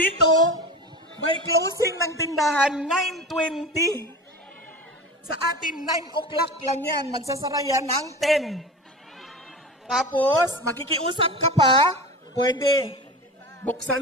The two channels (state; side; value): normal; both; correlation 0.31